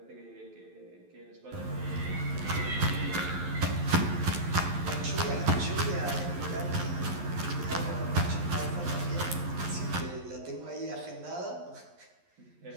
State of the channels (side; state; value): left; late; 11 ms